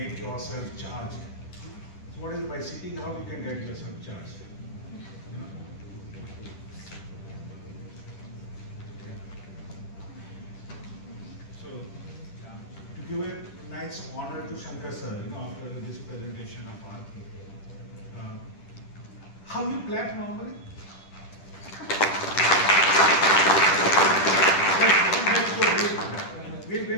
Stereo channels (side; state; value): right; late; 10 ms